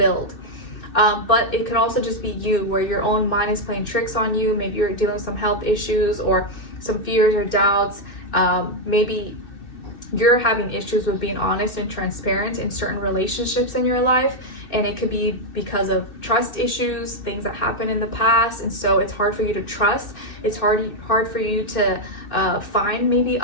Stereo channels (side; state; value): right; late; 2.5 ms